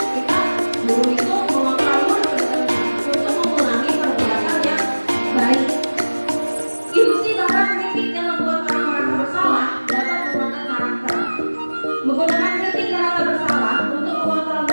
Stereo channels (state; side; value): inverted; both; correlation -1.00